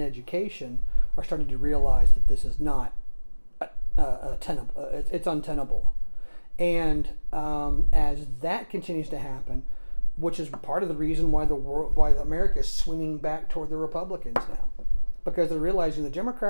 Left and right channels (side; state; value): both; inverted; correlation -1.00